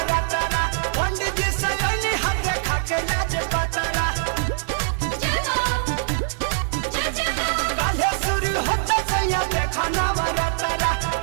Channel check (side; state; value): left; silent; 63 dB below the other